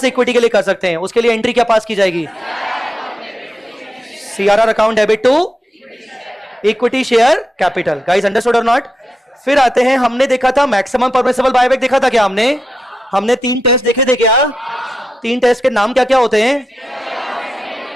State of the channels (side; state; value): both; normal; correlation 0.88